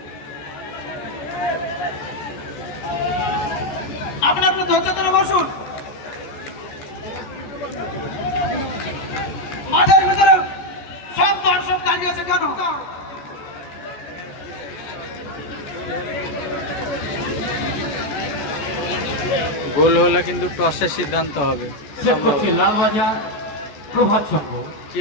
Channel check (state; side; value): late; right; 14 ms